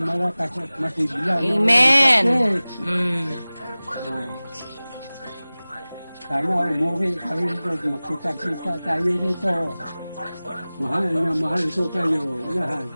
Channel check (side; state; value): both; inverted; correlation -0.98